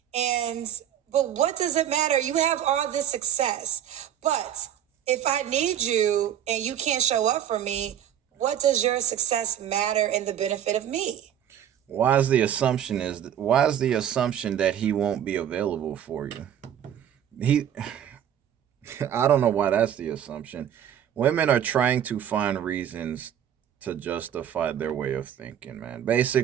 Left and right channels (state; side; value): quieter; left; 10.0 dB